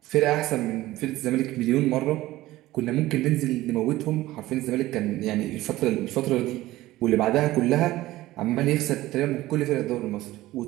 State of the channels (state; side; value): quieter; left; 16.8 dB